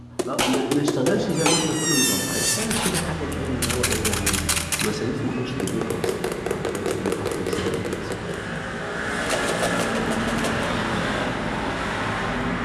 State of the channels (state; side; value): identical; both; correlation 1.00